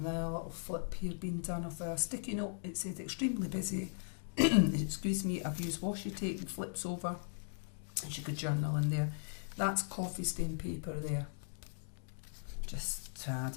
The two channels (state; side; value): silent; right; digital silence